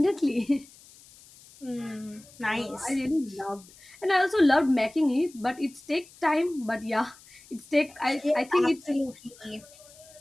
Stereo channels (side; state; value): left; noise; hiss, 23 dB below the sound